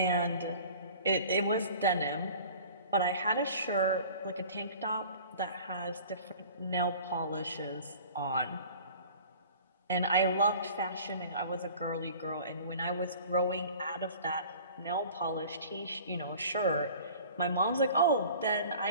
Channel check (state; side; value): inverted; both; correlation -0.45